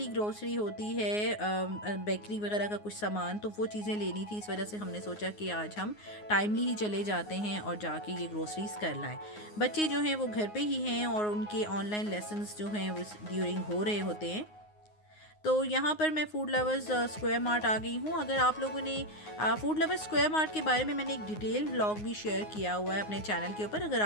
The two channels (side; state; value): right; late; 9.5 ms